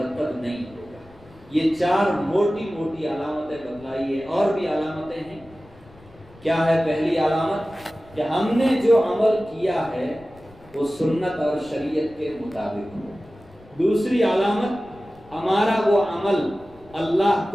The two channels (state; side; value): noise; left; rumble, 25 dB below the sound